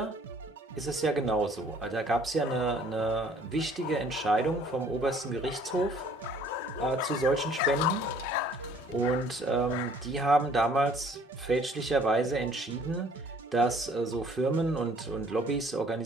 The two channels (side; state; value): both; normal; correlation 0.56